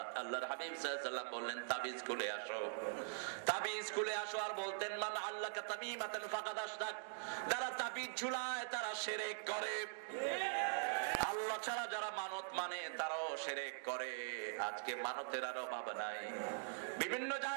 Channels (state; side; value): silent; left; digital silence